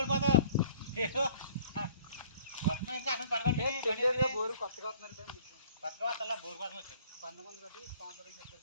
బోరు కొత్తగా వస్తున్నారు కొత్తగా వస్తా బోర్ కోసం వచ్చాను 19 కట్టి స్పాన్సర్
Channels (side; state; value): both; inverted; correlation -0.53